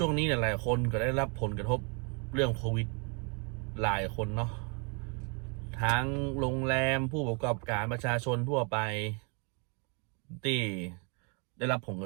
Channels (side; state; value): left; quieter; 35.9 dB